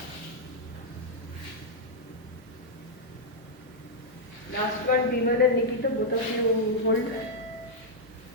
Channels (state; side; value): normal; both; correlation -0.06